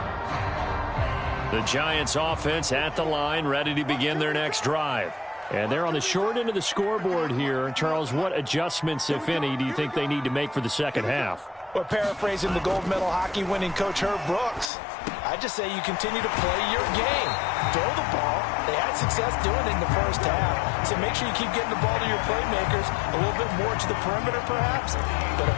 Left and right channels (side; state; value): right; drops out; at 14.7 s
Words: The Giants offense at the line, ready to begin their next drive. And they're on the short end of the scoreboard here. Charles, what adjustments, if any, do you think they need to make for the second half? Well, paraphrasing the gold medal hockey winning coach Herb Brooks, I just say you continue to play your game. Throw the ball. They had success doing it in the first half. So make sure you keep getting the ball to your playmakers, a little bit more to the perimeter perhaps. But